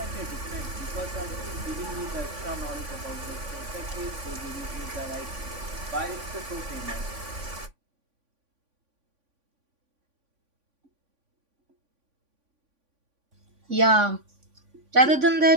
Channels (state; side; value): late; left; 3.5 ms